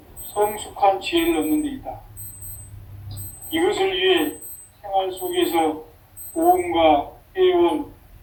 성숙한 지혜를 얻는 데 있다. 이것을 위해 생활 속에서 보험과 회원,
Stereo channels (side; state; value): both; identical; correlation 1.00